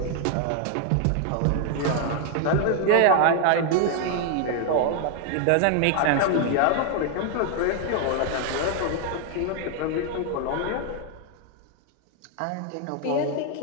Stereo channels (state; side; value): different; both; correlation 0.00